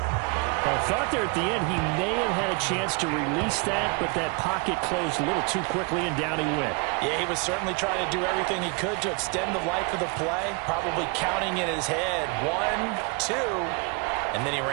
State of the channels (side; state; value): left; quieter; 31.2 dB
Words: I thought there at the end he may have had a chance to release that, but that pocket closed a little too quickly and down he went. Yeah, he was certainly trying to do everything he could to extend the life of the play, probably counting in his head 1, 2, and then he